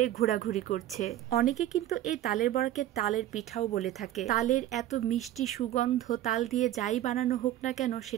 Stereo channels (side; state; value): left; quieter; 13.2 dB